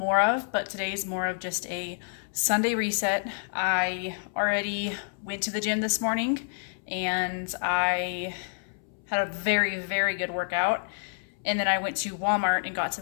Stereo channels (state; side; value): silent; right; 59 dB below the other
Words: of, but today's more of just a Sunday reset. I already went to the gym this morning and I had a very, very good workout. And then I went to Walmart and got